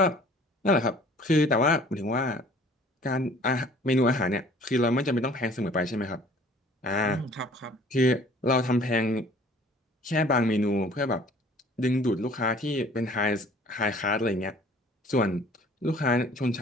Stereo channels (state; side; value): normal; both; correlation 0.52